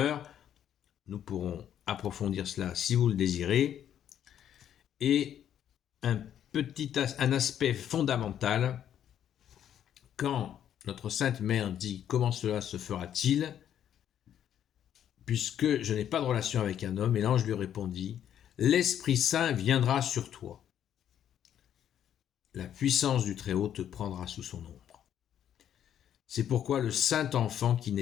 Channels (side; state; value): right; quieter; 10.0 dB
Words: Nous pourrons approfondir cela si vous le désirez. Et un aspect fondamental, quand notre Sainte Mère dit « Comment cela se fera-t-il » puisque je n'ai pas de relation avec un homme, et l'ange lui répondit, « L'Esprit Saint viendra sur toi. La puissance du Très-Haut te prendra sous son ombre. C'est pourquoi le Saint Enfant qui